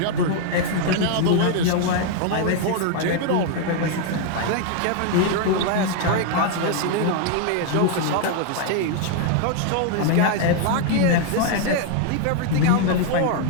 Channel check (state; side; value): different; both; correlation 0.00